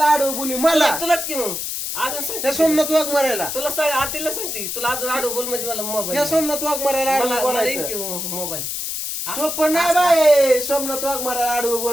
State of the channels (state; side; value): noise; left; hiss, 4 dB below the sound